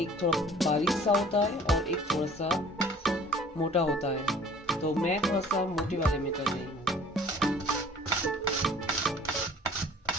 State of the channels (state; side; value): normal; both; correlation 0.50